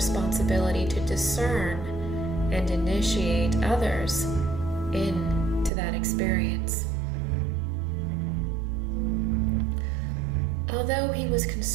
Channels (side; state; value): left; drops out; at 5.7 s